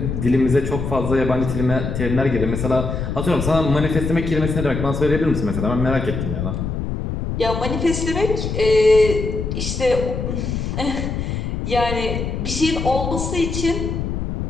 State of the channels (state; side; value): noise; left; rumble, 3 dB below the sound